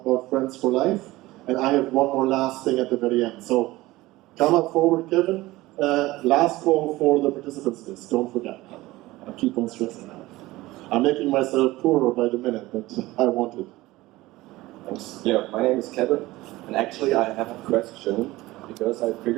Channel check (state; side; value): quieter; left; 18.7 dB